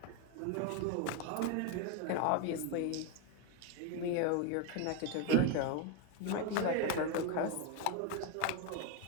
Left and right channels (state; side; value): different; both; correlation 0.02